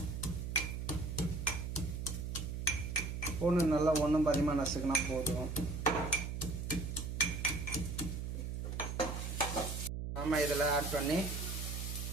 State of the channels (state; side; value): noise; right; hum, 4 dB below the sound